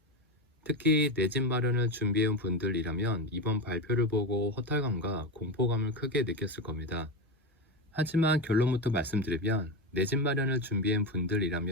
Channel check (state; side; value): normal; both; correlation 0.17